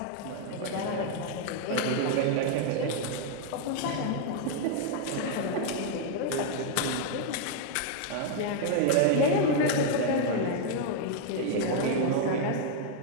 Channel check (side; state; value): both; different; correlation 0.00